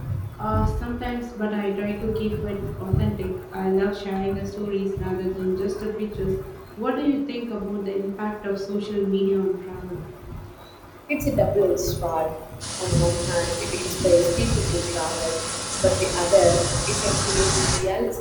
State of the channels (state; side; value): identical; both; correlation 1.00